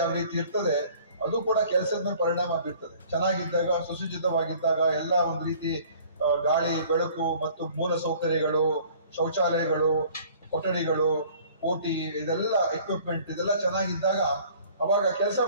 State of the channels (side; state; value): both; inverted; correlation -0.52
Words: ಯಾವ ರೀತಿ ಇರ್ತದೆ ಅದು ಕೂಡ ಕೆಲಸದ ಮೇಲೆ ಪರಿಣಾಮ ಬೀರ್ತದೆ. ಚೆನ್ನಾಗಿದ್ದಾಗ, ಸುಸಜ್ಜಿತವಾಗಿದ್ದಾಗ, ಎಲ್ಲ ಒಂದು ರೀತಿ ಗಾಳಿ, ಬೆಳಕು ಮತ್ತು ಮೂಲ ಸೌಕರ್ಯಗಳು, ಶೌಚಾಲಯಗಳು, ಕೊಠಡಿಗಳು, OT ಇದೆಲ್ಲ ಎಕ್ವಿಪ್ಮೆಂಟ್ ಇದೆಲ್ಲ ಚೆನ್ನಾಗಿದ್ದಾಗ ಅವಾಗ ಕೆಲಸ